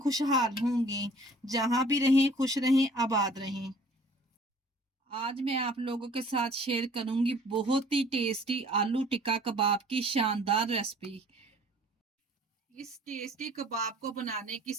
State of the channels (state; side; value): normal; both; correlation 0.53